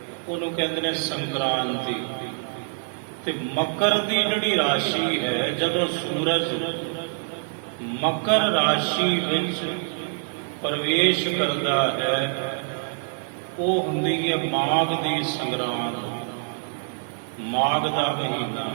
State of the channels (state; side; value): silent; left; digital silence